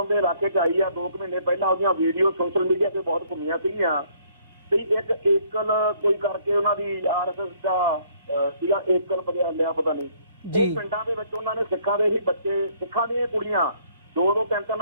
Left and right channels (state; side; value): inverted; both; correlation -0.63